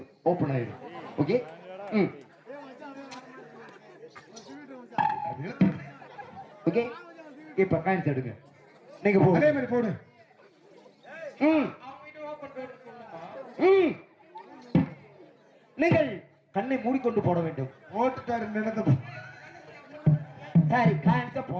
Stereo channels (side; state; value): both; identical; correlation 1.00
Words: ஓபன் ஆயிடும். ஓகே. ஓகே. இப்ப காயின்ஸ் எடுங்க. நீங்க போடுங்க. அதே மாதிரி போடு. நீங்கள் கண்ணை மூடிக்கொண்டு போட வேண்டும். ஓட்டுக்காரு நடந்த சரி காயின்ஸ